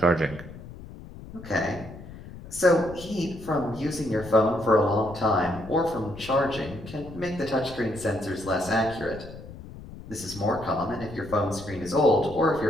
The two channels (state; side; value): noise; left; rumble, 15 dB below the sound